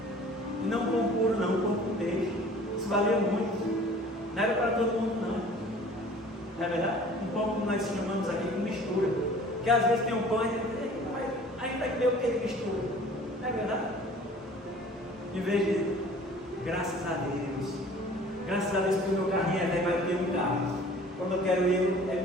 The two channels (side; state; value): both; normal; correlation 0.48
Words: E não um pão puro, não, um pão com peixe. Isso valia muito. Não era para todo mundo, não. Não é verdade? Um pão como nós chamamos aqui de mistura. Porque às vezes tem um pão e a gente vai comer o que de mistura. Não é verdade? Em vez de graças a Deus. Graças a Deus que o meu carrinho é velho, vai ter um carro. Quando eu quero ir, ele